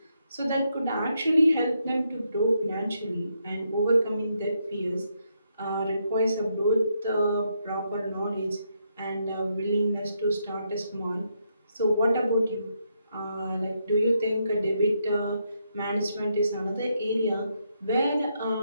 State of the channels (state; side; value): inverted; both; correlation -0.79